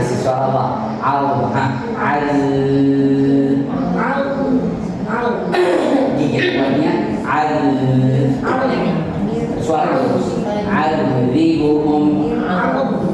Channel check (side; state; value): both; identical; correlation 1.00